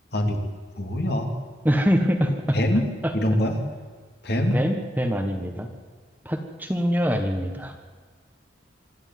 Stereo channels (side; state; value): both; normal; correlation 0.87